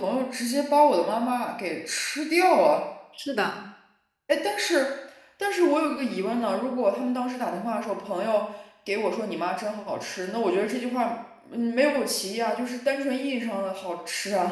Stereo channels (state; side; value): identical; both; correlation 1.00